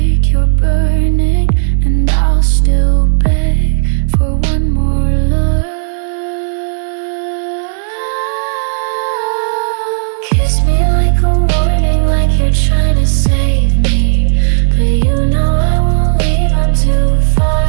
you're burning, and I'll still beg for one more love. Kiss me like a warning, like you're trying to save me. But you know I won't leave, I'm too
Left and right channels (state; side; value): silent; left; digital silence